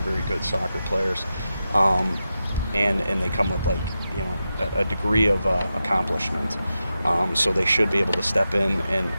very good soccer players. And they come with a degree of accomplishment. So they should be able to step in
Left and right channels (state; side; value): inverted; both; correlation -0.90